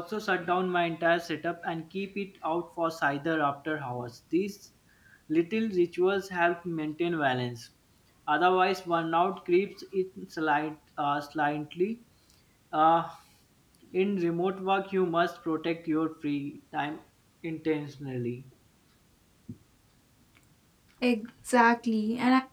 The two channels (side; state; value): both; identical; correlation 1.00